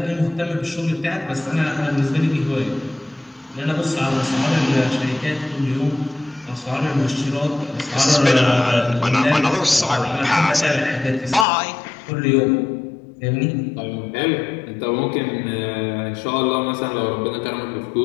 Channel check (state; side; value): drops out; right; at 11.5 s